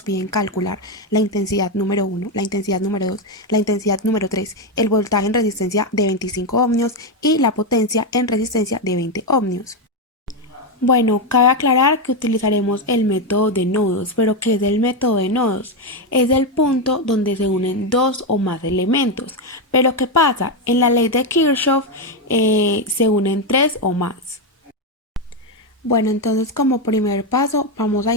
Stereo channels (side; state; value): both; normal; correlation 0.07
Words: piden calcular la intensidad número 1, la intensidad número 2, la intensidad número 3, el voltaje en resistencia de 25 ohmios y la potencia en resistencia de 20 ohmios. Bueno, cabe aclarar que utilizaremos el método de nodos, pero ¿qué es el método de nodos? Es el punto donde se unen dos o más elementos. Pero ¿qué pasa? En la ley de Kirchhoff se unen tres o más. Bueno, entonces como primer paso vamos a